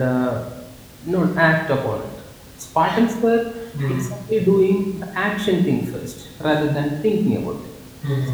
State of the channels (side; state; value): both; identical; correlation 1.00